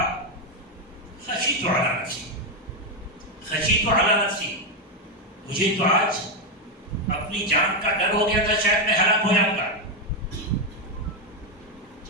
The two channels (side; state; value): both; normal; correlation 0.05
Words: خشیت علی نفسی، مجھے تو آج اپنی جان کا ڈر ہو گیا تھا، شاید میں ہلاک ہو جاؤں گا.